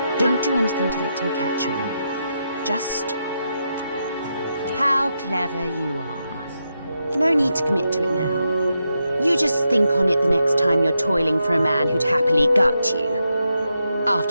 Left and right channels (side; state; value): both; inverted; correlation -0.85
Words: Don't do anything to let him catch on. Just... How clever you are. No need to commit to it now. You just think on it the next time you're toiling for a man who'd happily gut you.